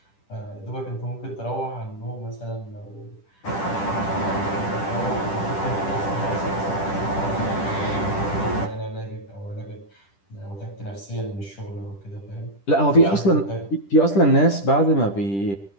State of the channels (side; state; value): right; late; 10 ms